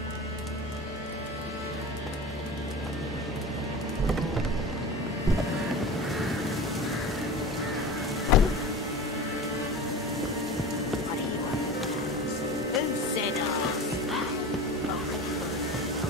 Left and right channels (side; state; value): both; normal; correlation 0.32